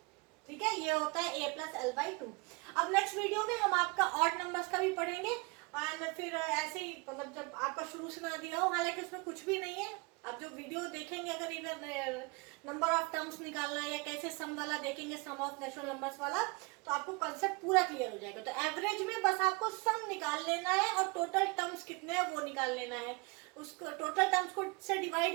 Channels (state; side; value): quieter; left; 28.2 dB